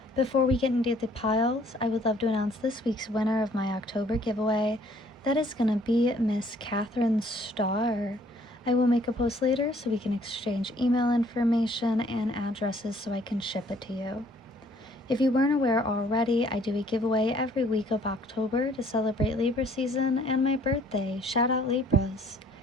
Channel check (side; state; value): both; normal; correlation 0.60